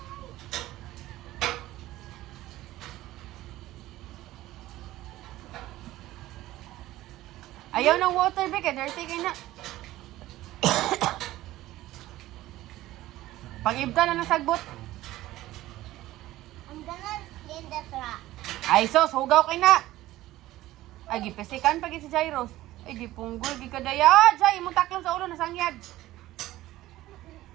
Ayaw ng water, Bek. Dirty kayo na. Pag-ibta na ng sagbot. I'm gonna clean the truck. Ay, sos. Hugaw kayo na. Ay, gipesikan pag si Jairos. Ay, gipunggol. Gikadaya. Jai, imong taklong sa ulo. Nasangyag.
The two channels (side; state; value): left; quieter; 16.0 dB